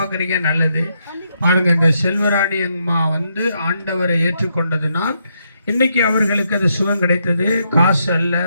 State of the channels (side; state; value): both; inverted; correlation -0.78